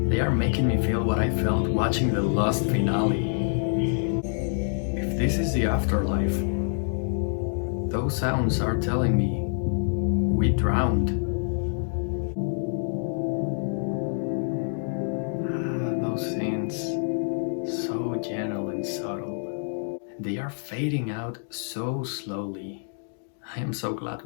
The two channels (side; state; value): right; silent; digital silence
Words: They are making me feel what I felt watching the Lost finale. If this is the afterlife, those sounds are telling me we drowned. Those scenes, so gentle and subtle. They are fading out so slowly. I am so glad